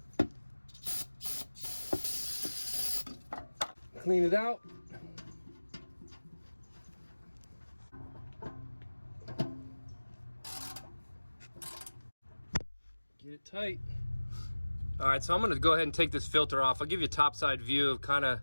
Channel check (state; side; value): inverted; both; correlation -1.00